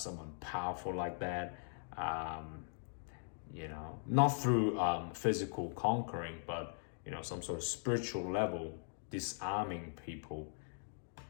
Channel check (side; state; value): right; silent; digital silence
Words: powerful like that. Not through physical conquering, but some sort of spiritual level, disarming people